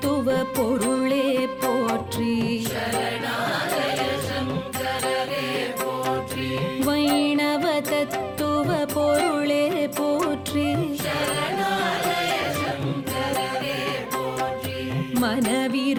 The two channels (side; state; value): both; identical; correlation 1.00